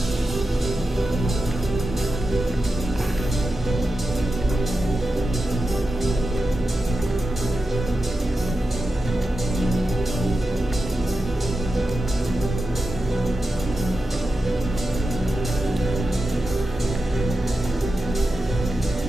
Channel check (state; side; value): normal; both; correlation 0.91